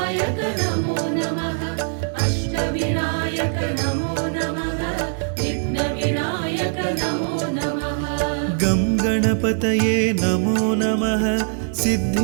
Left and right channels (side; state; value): left; silent; 63 dB below the other